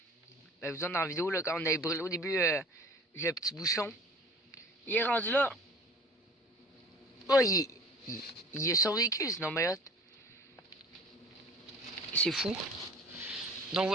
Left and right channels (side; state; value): both; normal; correlation 0.45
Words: Ben, vous êtes dans la vidéo, là, quand on avait brûlé au début le petit bouchon. Il est rendu là. Oh, il a survécu, sinon, mais hot. C'est fou. Donc